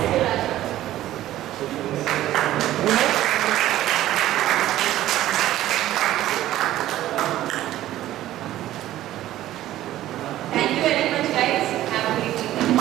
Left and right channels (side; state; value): left; quieter; 14.0 dB